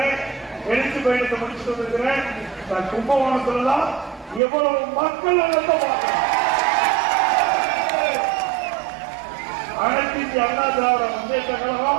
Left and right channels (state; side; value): drops out; left; at 4.4 s